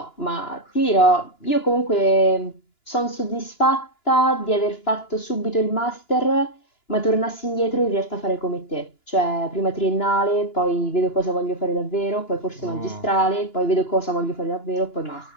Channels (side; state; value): right; late; 2.9 ms